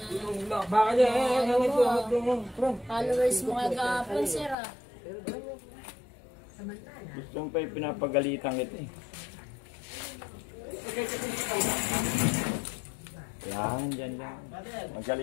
Bakit followers mo kagapon, sir ah. Gusto mo pa yung pinapagalitan kita eh. Yan, dyan.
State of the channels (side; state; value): right; drops out; at 4.5 s